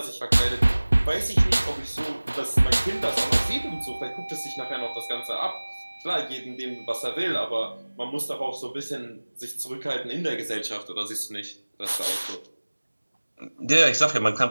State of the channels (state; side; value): inverted; both; correlation -1.00